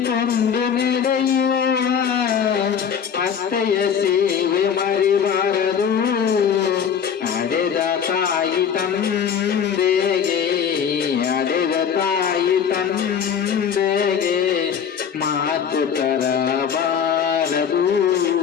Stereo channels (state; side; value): quieter; right; 7.6 dB